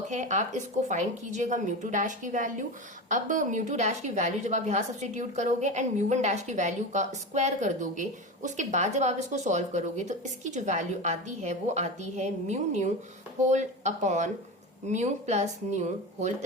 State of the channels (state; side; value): normal; both; correlation 0.24